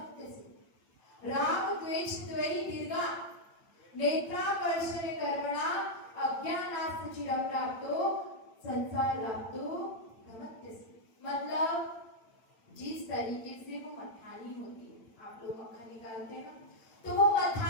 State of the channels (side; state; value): right; late; 8.7 ms